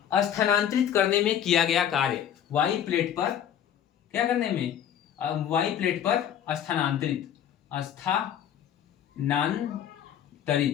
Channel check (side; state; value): right; quieter; 9.7 dB